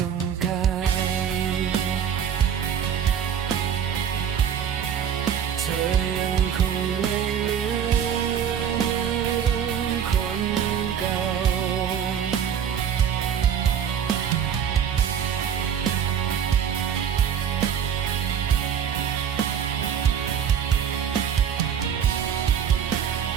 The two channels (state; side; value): quieter; left; 8.4 dB